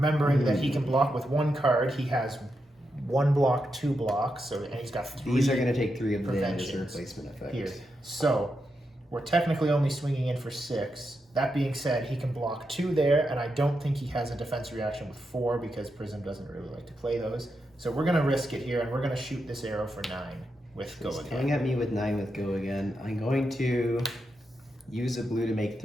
that he can block with 1 card, he has 1 block, 2 blocks, so and he's got 3. These are going to take 3 of the damage as a preventions replacement effect. here. So, we're technically only swinging in for 6. That being said, he can block 2 there, and I don't think he has a defense reaction with 4 because Prism doesn't really like to play those. So we're going to risk it here, and we're going to shoot this arrow for 9 with go He's again. coming at me with 9 with go again. I'm going to use a blue to make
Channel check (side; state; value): both; normal; correlation 0.85